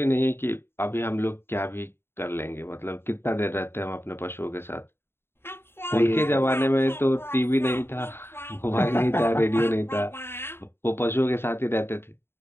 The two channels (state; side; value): late; right; 0.11 ms